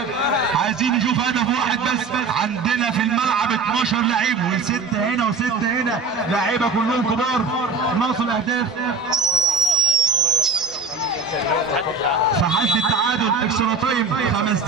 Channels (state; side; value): quieter; left; 4.2 dB